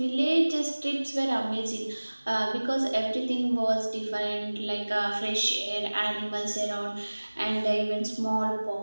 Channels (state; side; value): inverted; both; correlation -1.00